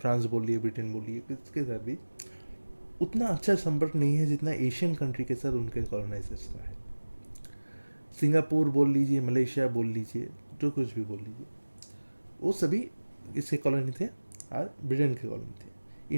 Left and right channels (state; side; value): inverted; both; correlation -1.00